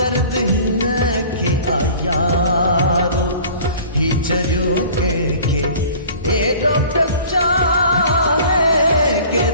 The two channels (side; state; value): both; inverted; correlation -0.46